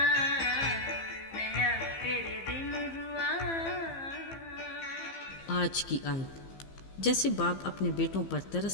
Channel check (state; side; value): late; right; 15 ms